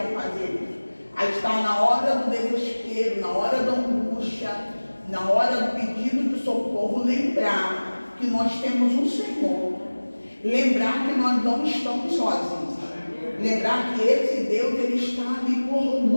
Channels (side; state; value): both; inverted; correlation -1.00